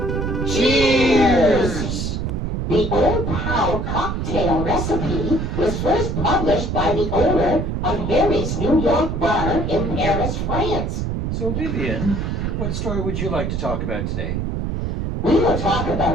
Cheers! The OodnPal Cocktail recipe was first published by the owner of Harry's New York bar in Paris, France. So, Vivian, what story would you like to talk about today? We will talk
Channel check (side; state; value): right; noise; rumble, 2 dB below the sound